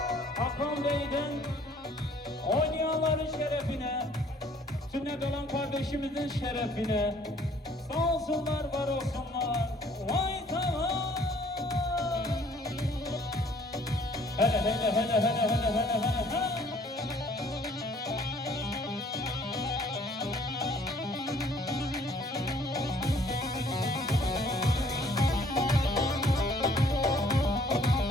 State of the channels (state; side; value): normal; both; correlation 0.58